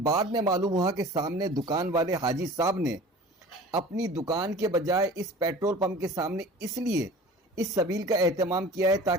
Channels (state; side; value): normal; both; correlation 0.41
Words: बाद में मालूम हुआ कि सामने दुकान वाले हाजी साहब ने अपनी दुकान के बजाय इस पेट्रोल पंप के सामने इसलिए इस सबील का एहतमाम किया है